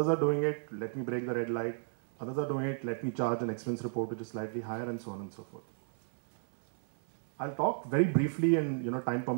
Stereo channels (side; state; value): left; silent; digital silence